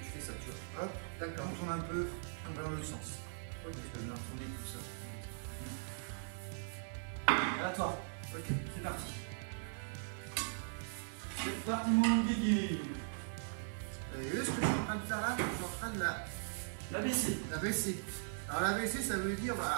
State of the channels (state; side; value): silent; left; digital silence